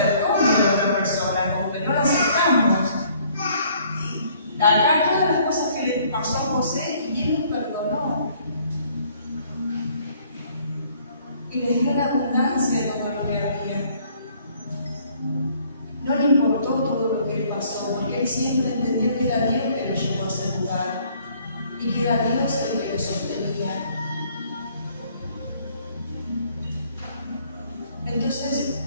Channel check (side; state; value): both; inverted; correlation -0.61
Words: de la otra persona, como que no lo aceptamos. Acá todas las cosas que le pasó a José, y él nos perdonó. Y le dio la abundancia de todo lo que había. No le importó todo lo que pasó, porque él siempre entendió que era Dios que lo llevó a ese lugar, y que era Dios el que lo sostenía. Entonces,